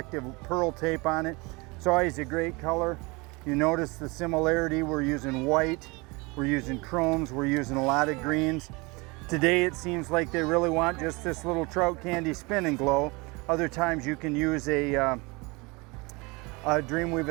pearl tape on it. It's always a great color. You notice the similarity. We're using white, we're using chromes, we're using a lot of greens. Today it seems like they really want just this little trout candy spin and glow. Other times you can use a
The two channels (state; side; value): quieter; left; 26.3 dB